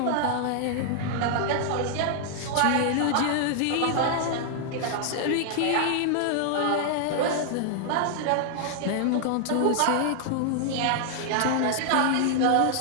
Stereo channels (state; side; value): different; both; correlation -0.01